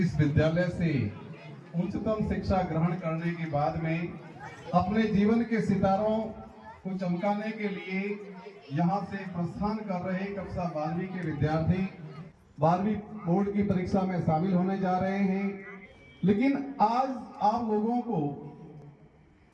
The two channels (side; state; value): both; identical; correlation 1.00